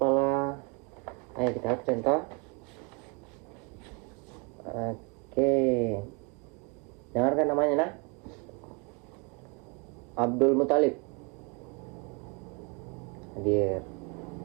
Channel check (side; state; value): left; quieter; 32.8 dB